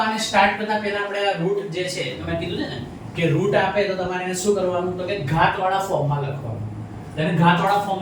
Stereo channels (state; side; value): identical; both; correlation 1.00